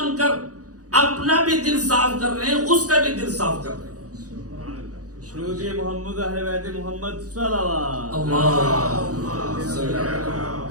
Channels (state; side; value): late; left; 0.67 ms